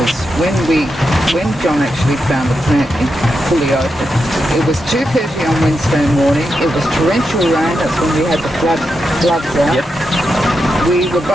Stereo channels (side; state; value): both; normal; correlation 0.86